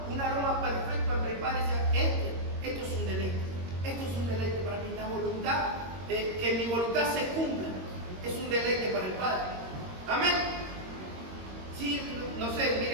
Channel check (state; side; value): late; left; 22 ms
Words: aroma perfecto al Padre. Decía, esto es un deleite. Esto es un deleite para mí. La voluntad, que mi voluntad se cumpla, es un deleite para el Padre. Amén. Sí, no sé,